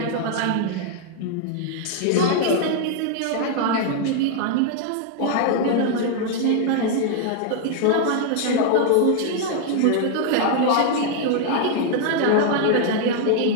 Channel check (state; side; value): different; both; correlation 0.00